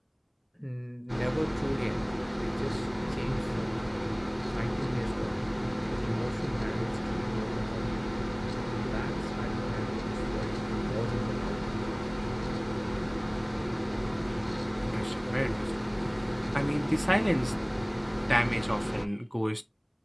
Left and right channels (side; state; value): both; identical; correlation 1.00